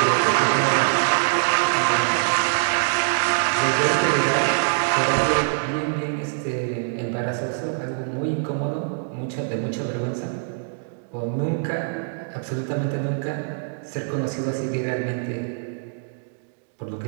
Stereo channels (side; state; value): left; silent; digital silence